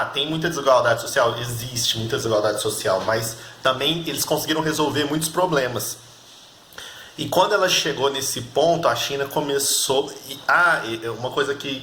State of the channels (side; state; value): both; identical; correlation 1.00